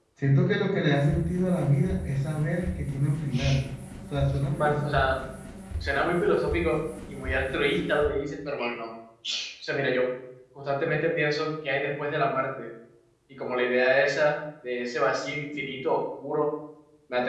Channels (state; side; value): identical; both; correlation 1.00